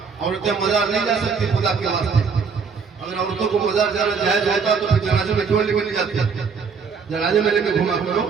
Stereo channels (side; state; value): left; quieter; 5.6 dB